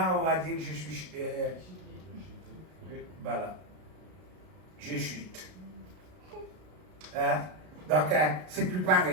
on va dire que je suis... voilà. Je chute. Donc, c'est plus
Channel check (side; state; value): left; late; 33 ms